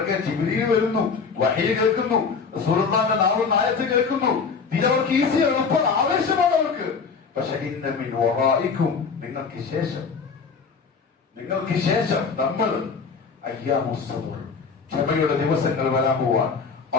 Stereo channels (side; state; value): right; quieter; 5.3 dB